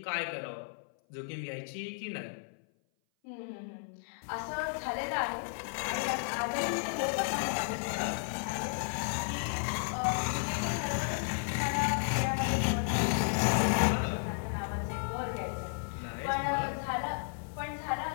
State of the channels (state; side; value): silent; right; 55 dB below the other